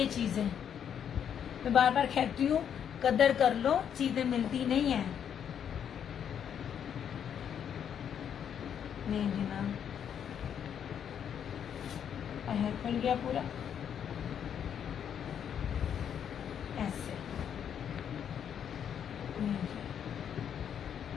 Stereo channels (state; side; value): quieter; right; 8.6 dB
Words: चीजें। मैं बार बार कहती हूँ कदर कर लो, चीजें मिलती नहीं है। नहीं जी ना, खुल गया पूरा ऐसे।